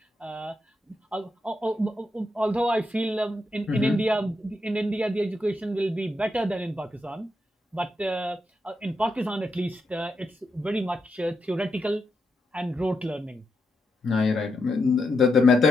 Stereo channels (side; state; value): both; normal; correlation 0.83